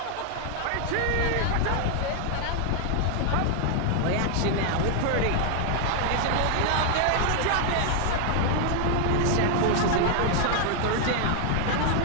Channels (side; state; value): both; different; correlation 0.00